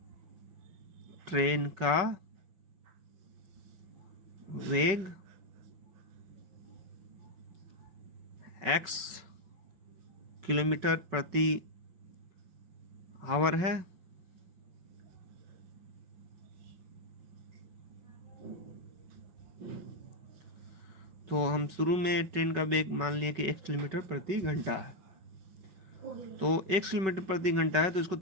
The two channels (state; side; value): late; left; 5.3 ms